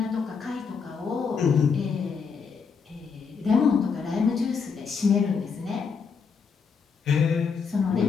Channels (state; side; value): quieter; right; 5.7 dB